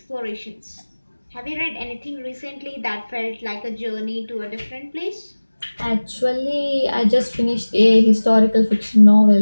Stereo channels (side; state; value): both; inverted; correlation -1.00